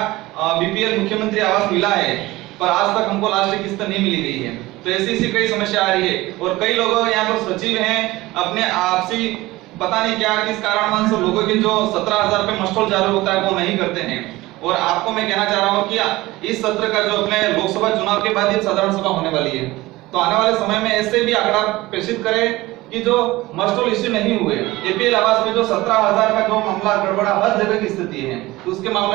बीपीएल मुख्यमंत्री आवास मिला है, पर आज तक हमको लास्ट किस्त नहीं मिली गई है। तो ऐसी कई समस्या आ रही है और कई लोग यहाँ पर सचिव हैं, अपने आपसी पता नहीं क्या किस कारणवश लोगों के जो 17,000 रुपए मस्टोल जारी होता है वो नहीं करते हैं। और आपको मैं कहना चाह रहा हूँ कि इस सत्र का जो अपने लोकसभा चुनाव के बाद ये साधारण सभा होने वाली है, तो आने वाले समय में ऐसे भी आंकड़ा प्रेषित करें कि जो मस्टोल इश्यू नहीं हुए, एपीएल आवास में जो 17,000 का जो मामला गड़बड़ा हर जगह की स्थिति है, तो उसके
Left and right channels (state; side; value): quieter; left; 19.1 dB